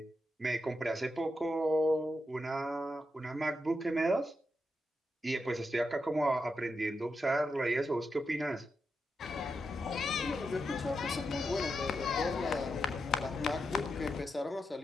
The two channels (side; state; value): both; normal; correlation 0.86